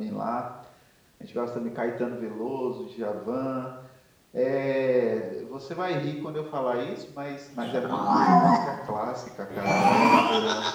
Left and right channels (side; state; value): both; identical; correlation 1.00